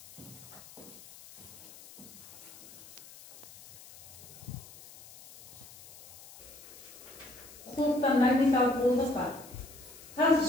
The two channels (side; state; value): left; noise; hiss, 19 dB below the sound